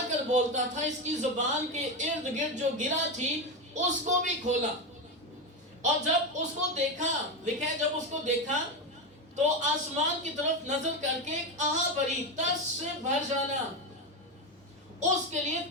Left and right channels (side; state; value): both; normal; correlation 0.13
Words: کر بولتا تھا اس کی زبان کے ارد گرد جو گرہ تھی اس کو بھی کھولا، اور جب اس کو دیکھا، لکھا ہے جب اس کو دیکھا تو آسمان کی طرف نظر کر کے ایک آہ بھری، ترس سے بھر جانا، اس کے لیے